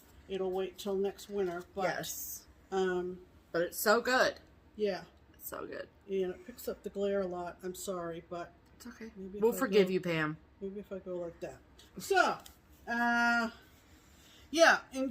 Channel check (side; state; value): both; identical; correlation 1.00